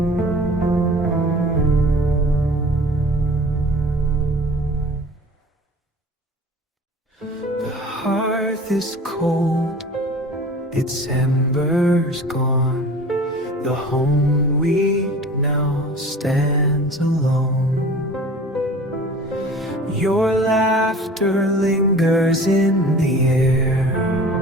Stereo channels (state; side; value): normal; both; correlation 0.42